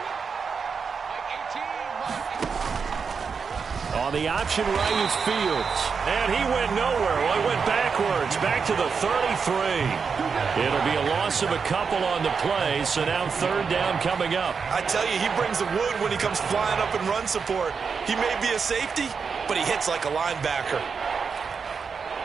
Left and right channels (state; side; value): quieter; left; 5.7 dB